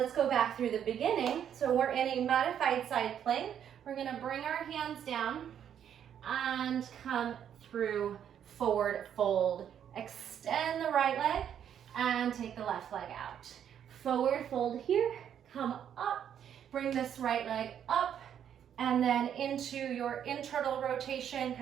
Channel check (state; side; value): quieter; left; 9.2 dB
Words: go back through the beginning. So we're in a modified side plank. We're going to bring our hands down and come through forward fold. Extend the right leg and take the left leg out. Forward fold here, come up, bring this right leg up, and then into your internal rotation,